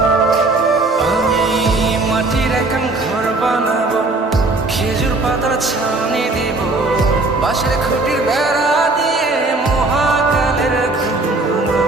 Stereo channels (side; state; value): left; quieter; 3.2 dB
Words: আমি মাটির এখন ঘর বানাবো, খেজুর পাতার ছাউনি দিব। বাঁশের খুঁটির বেড়া দিয়ে মহাকালের ঘুম